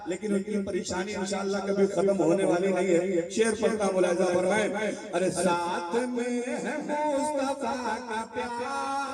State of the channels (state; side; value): identical; both; correlation 1.00